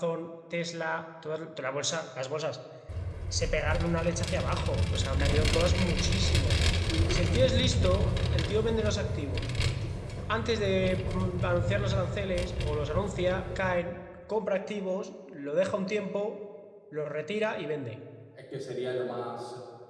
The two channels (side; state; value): both; identical; correlation 1.00